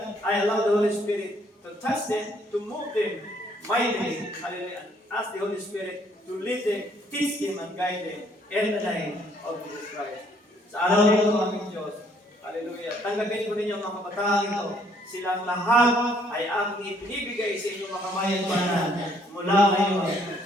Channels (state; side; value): normal; both; correlation 0.65